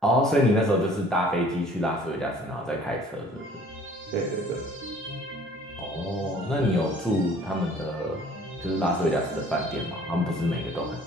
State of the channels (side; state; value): both; normal; correlation 0.52